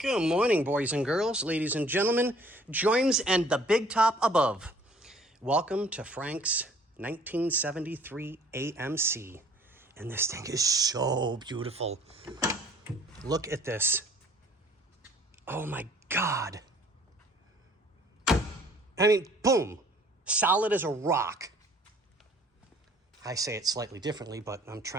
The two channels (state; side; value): normal; both; correlation 0.55